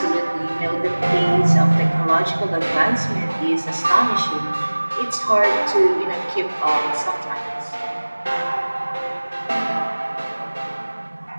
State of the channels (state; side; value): inverted; both; correlation -1.00